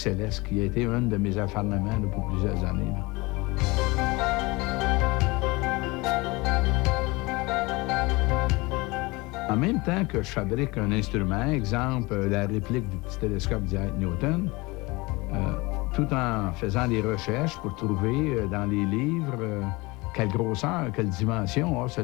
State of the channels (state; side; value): quieter; right; 23.7 dB